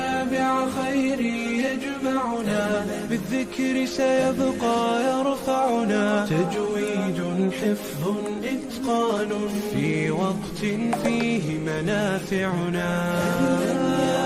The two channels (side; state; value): both; identical; correlation 1.00